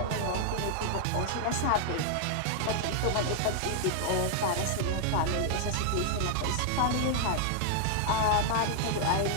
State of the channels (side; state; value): both; different; correlation 0.00